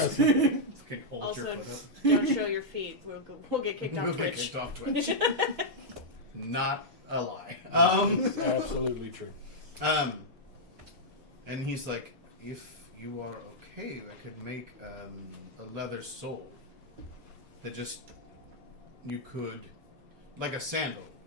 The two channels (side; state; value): left; late; 4.1 ms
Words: hold Also, your foot up. don't show your feet. We'll get kicked We'll off get Twitch. kicked off Twitch. Not a lie. It's absolutely true. And he's like, if you are okay, I could make a leather sole that just you could, like a sandal,